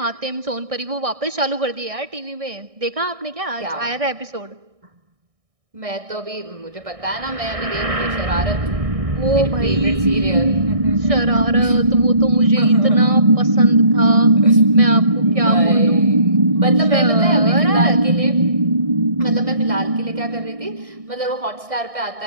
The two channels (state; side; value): late; left; 1.6 ms